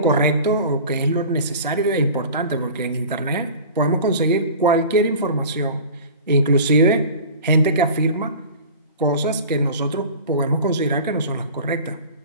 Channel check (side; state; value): both; inverted; correlation -0.39